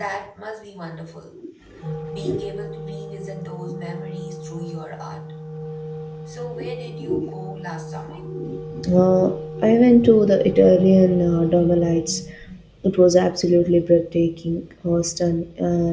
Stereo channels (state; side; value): identical; both; correlation 1.00